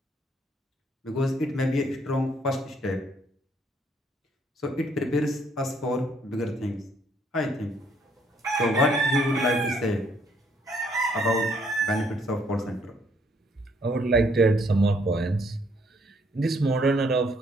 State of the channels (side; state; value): both; normal; correlation 0.68